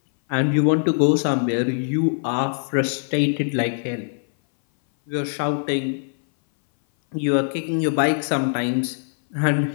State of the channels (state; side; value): silent; right; 60 dB below the other